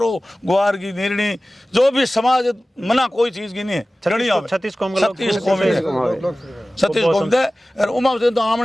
ग्वार की निर्णी जो भी समाज मना कोई चीज की नहीं है 36 कौम दे और उमा से तो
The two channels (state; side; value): normal; both; correlation 0.97